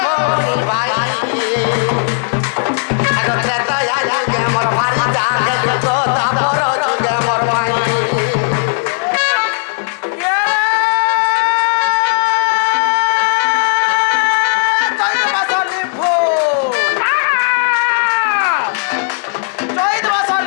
মোর ভাই আগো ত্রেতা যুগে মোর ভারি জাগে তো তাপর যুগে মোর মাই ये चैत बसली फूल चैत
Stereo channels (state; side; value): silent; right; digital silence